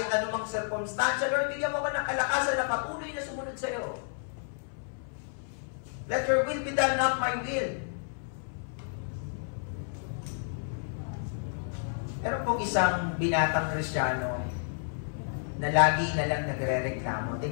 anumang circumstansya, Lord, bigyan mo ko ng kalakasan na patuloy na sumunod sa iyo. Let your will be done, not my will. Pero kung isang binatang Kristiyano na lagi na lang nagre-reklamo,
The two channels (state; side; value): silent; right; 57 dB below the other